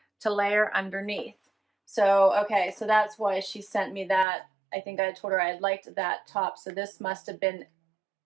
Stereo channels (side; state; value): left; drops out; at 4.2 s